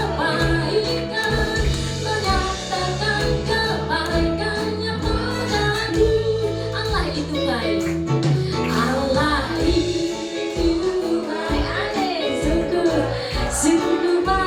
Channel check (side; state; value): both; identical; correlation 1.00